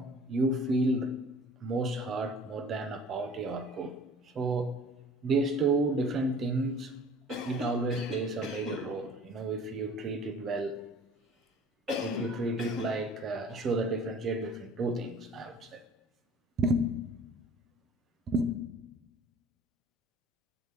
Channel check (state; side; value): normal; both; correlation 0.48